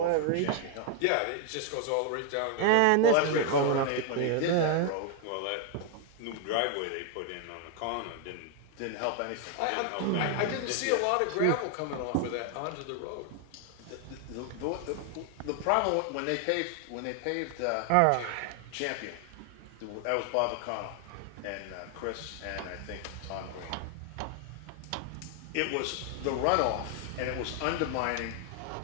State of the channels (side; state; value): both; different; correlation 0.00